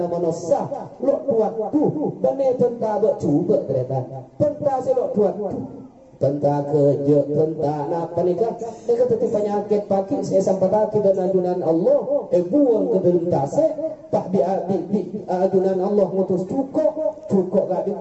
manusia lo tuat tu benar pentah bercuba ternyata pentah selok tuat tu tentang kerja, tentang apa nikah, mereka tetap penyakit pagi, saya sampai lagi dan ajunan Allah, buang ke dalam tasik, tak di ajunan Allah mutus cukup gak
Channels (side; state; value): both; identical; correlation 1.00